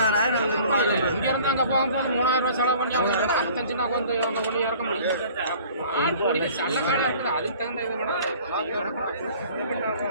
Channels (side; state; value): both; inverted; correlation -0.50